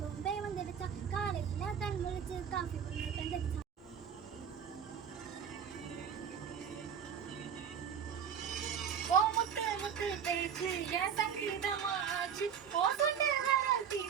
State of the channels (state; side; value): quieter; left; 7.7 dB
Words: பே வந்துடுச்சா, காலையில கண் முழிச்சு காஃபி பண்ணி தந்துடுச்சா. முத்து பேச்சு என் சங்கீதமாச்சு, ஓ சொன்ன